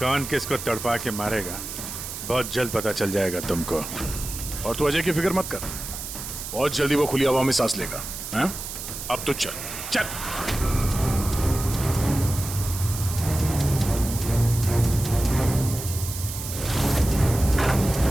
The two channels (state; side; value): noise; right; hiss, 8 dB below the sound